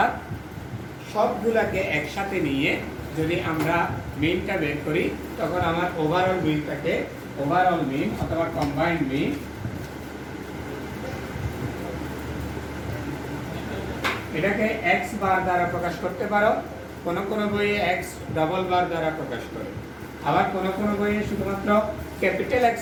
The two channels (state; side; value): identical; both; correlation 1.00